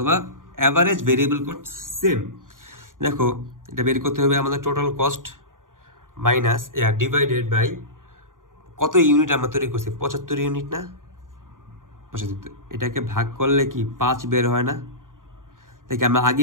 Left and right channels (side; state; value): left; late; 0.89 ms